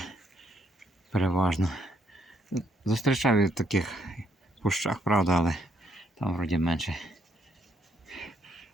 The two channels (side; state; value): both; normal; correlation 0.72